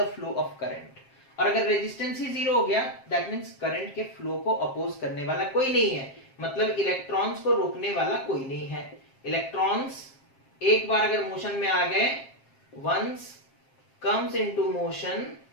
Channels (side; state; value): right; late; 7.5 ms